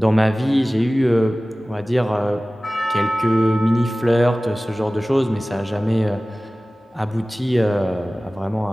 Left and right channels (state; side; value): normal; both; correlation 0.98